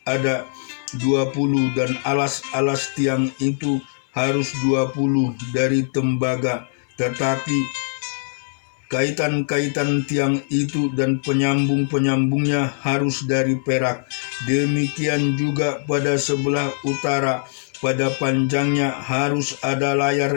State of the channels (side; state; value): right; silent; 57 dB below the other